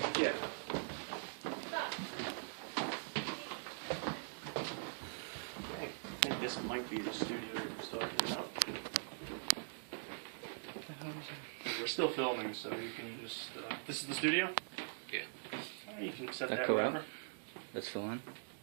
Yeah. I think this might be the studio that we're talking about. We're still filming, so you can just. This is the studio? Yeah. You can set That that go out? wherever. That's the one.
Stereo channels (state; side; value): silent; left; digital silence